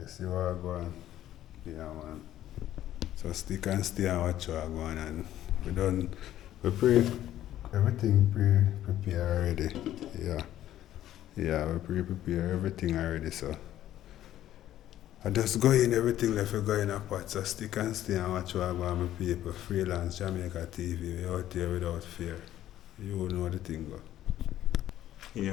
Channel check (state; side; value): quieter; right; 12.7 dB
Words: see what I'm going? Yeah man. So stick and stay and watch what I'm going and everything pre-prepared already. Yeah. Yeah, we pre-prepare everything already, so I just go in everything left we go in a pot, so stick and stay and watch what I go on my people. Freelance Jamaica TV, we out there without fear. You know the thing go.